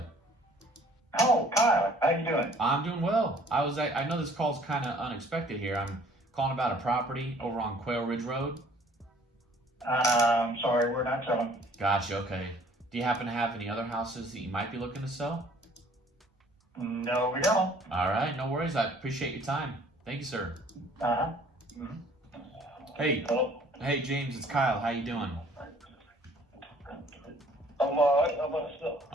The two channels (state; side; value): normal; both; correlation 0.56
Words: Oh, Kyle, how you doing? I'm doing well. I know this call's kind of unexpected here. I'm calling about a property over on Quail Ridge Road. I'm sorry, we're not selling. Gotcha, okay. Do you happen to have any other houses that you might be looking to sell? No, we don't. All right, no worries. I appreciate your time. Thank you, sir. Uh-huh. Hey, Hello. hey, James, it's Kyle. How you doing? I'm alright, how about yourself?